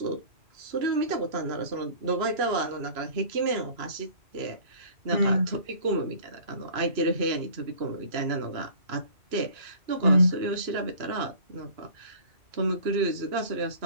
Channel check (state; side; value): late; left; 2.9 ms